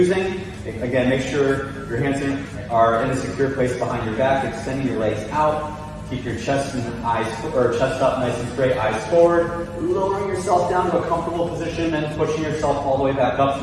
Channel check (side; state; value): both; identical; correlation 1.00